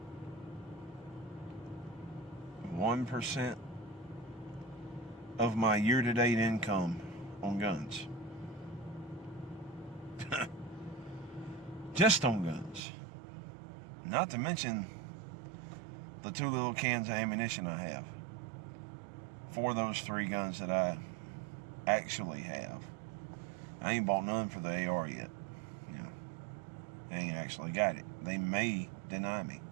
of my year-to-date income on guns. Just on guns. Not to mention the 2 little cans of ammunition I have for those 3 guns that I actually have. I ain't bought none for the AR yet. You know, I ain't actually got it. They may deny me.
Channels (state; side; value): drops out; left; at 12.8 s